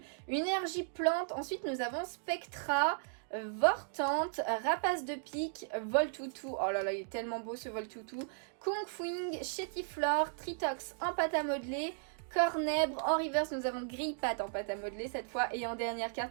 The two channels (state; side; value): silent; left; digital silence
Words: Une énergie plante, ensuite nous avons Spectra, Vortante, Rapace de pique, Voltoutou. Oh là là, il est tellement beau ce Voltoutou. Kungfuing, Chétiflore, Tritox en pâte à modeler, Cornèbre. En reverse, nous avons Grillpat en pâte à modeler cette fois. Et en dernière